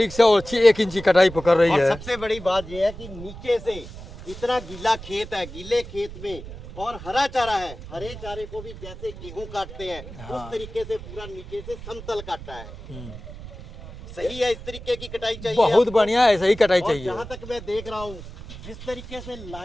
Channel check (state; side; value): noise; right; rumble, 13 dB below the sound